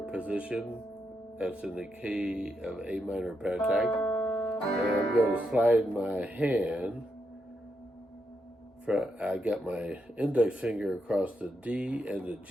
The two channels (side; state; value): both; normal; correlation 0.82